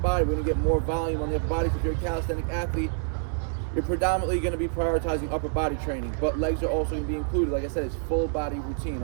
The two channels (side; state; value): left; silent; 60 dB below the other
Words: We're going to get more volume on the upper body. If you're a calisthenic athlete, you're predominantly going to be prioritizing upper body training, but legs are also going to be included. Like I said, it's full body routine,